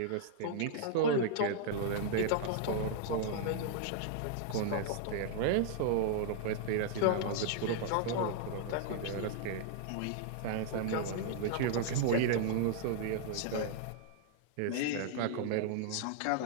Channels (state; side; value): different; both; correlation -0.01